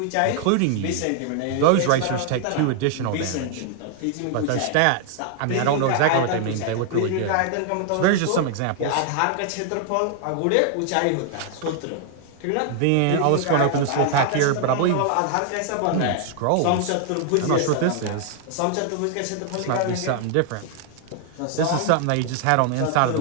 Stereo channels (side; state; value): both; different; correlation 0.00